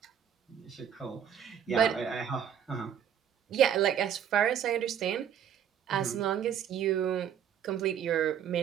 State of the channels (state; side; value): quieter; left; 9.1 dB